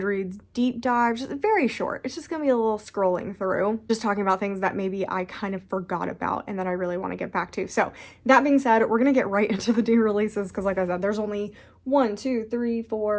deep dive, just very short. It's just going to be a little scrolling through, just talking about things that maybe I kind of forgot about and that I really want to get back to. So that being said, we're going to get right into the new releases because like I said, there's only 1, 2, 3,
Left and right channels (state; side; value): identical; both; correlation 1.00